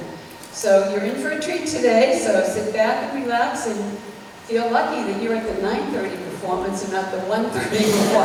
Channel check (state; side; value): identical; both; correlation 1.00